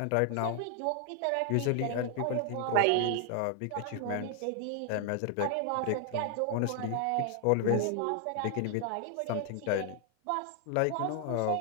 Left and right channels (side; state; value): both; different; correlation 0.00